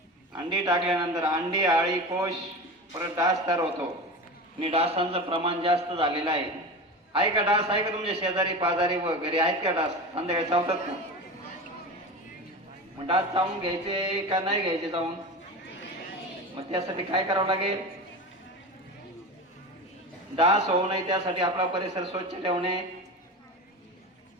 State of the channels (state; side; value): normal; both; correlation 0.28